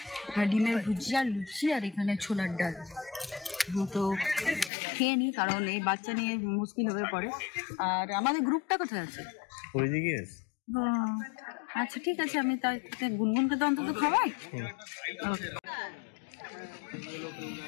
ডিমের ভুজিয়া, লুচি আর এখানে ছোলার ডাল। তো খেয়ে নি, কারণ এই বাচ্চা নিয়ে মুশকিল হয়ে পড়ে। আর আমাদের গ্রুপটা কোথায় আছে? আচ্ছা ঠিক আছে, আমি তাই গুনগুনকে তো অন্তত খাওয়াই।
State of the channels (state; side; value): drops out; right; at 4.7 s